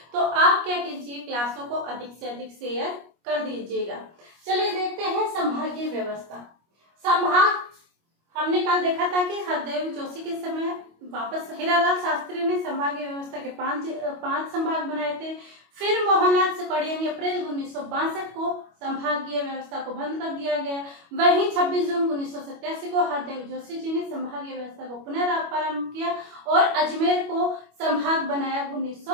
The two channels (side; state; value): left; late; 25 ms